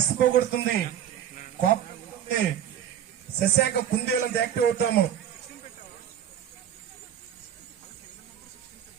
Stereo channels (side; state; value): left; quieter; 9.8 dB